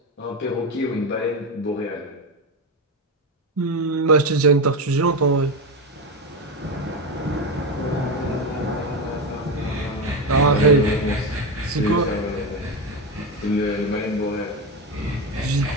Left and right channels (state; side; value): normal; both; correlation 0.14